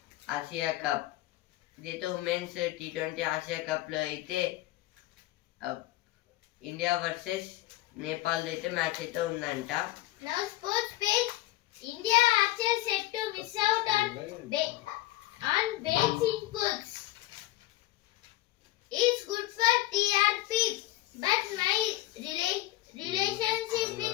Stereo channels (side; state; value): right; quieter; 16.6 dB